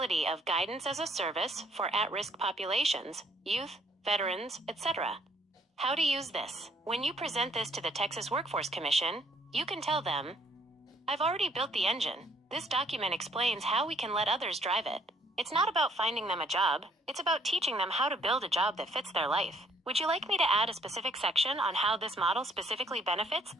of guidance as a service for at-risk populations, youth, veterans, etc. How to use this. When you present this to the Texas Workforce Commission, you can tell them, "I've already built the engine. This document explains how we can let others drive it. It's not about finding them a job, it's about teaching them how to build a job that fits their life. Would you like me to add a specific section on how this model specifically benefits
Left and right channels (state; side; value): normal; both; correlation 0.64